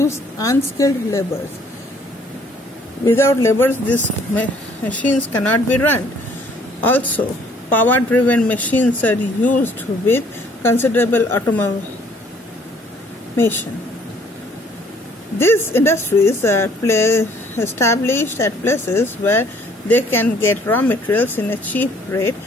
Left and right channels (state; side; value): normal; both; correlation 0.60